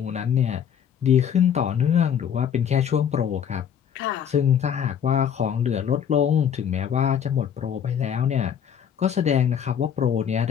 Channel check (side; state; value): right; quieter; 8.4 dB